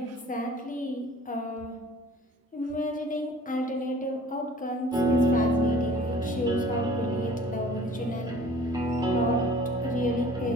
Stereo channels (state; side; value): normal; both; correlation 0.49